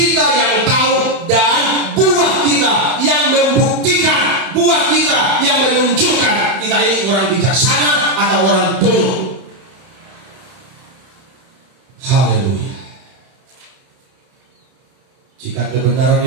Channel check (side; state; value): left; late; 31 ms